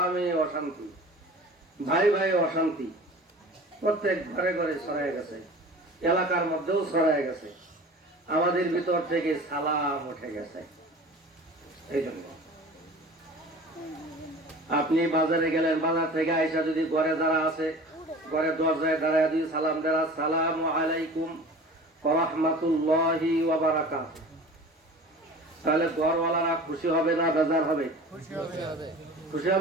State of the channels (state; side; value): normal; both; correlation 0.40